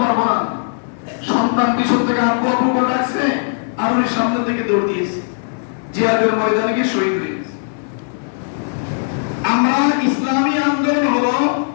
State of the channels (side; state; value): right; silent; 60 dB below the other